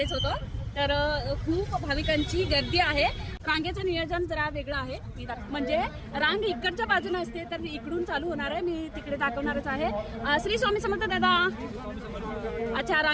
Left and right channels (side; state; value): both; identical; correlation 1.00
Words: होतो. तर खूप भाविकांची गर्दी आहे. रांगेचं नियोजन जरा वेगळं आहे. म्हणजे रांग इकडच्या बाजूने असते तर इकडून चालू होणार आहे. मी तिकडे दाखवणारच आहे. श्री स्वामी समर्थ दादा. अच्छा,